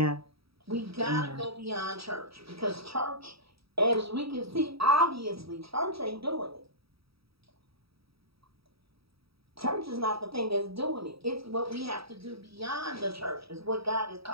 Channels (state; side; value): late; left; 0.76 ms